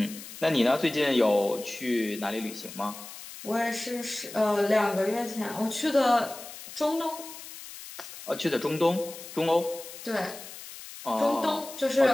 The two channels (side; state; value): left; noise; hiss, 14 dB below the sound